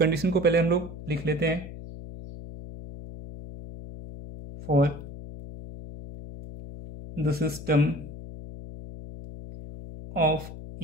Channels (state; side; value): noise; left; hum, 12 dB below the sound